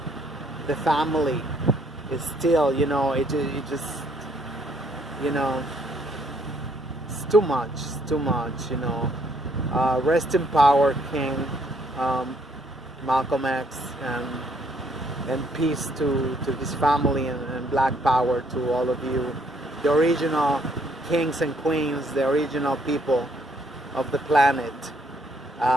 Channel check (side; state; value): both; normal; correlation 0.68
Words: the family. Is still, you know, it just, you know, it's too much, you know. Rest in power, King Malcolm X, and peace to his family, and black power to all of you, the original kings and queens, the original people of the planet.